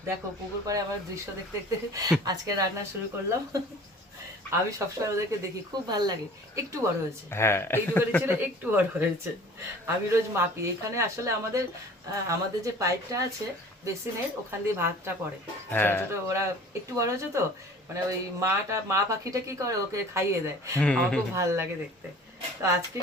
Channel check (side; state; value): both; normal; correlation 0.46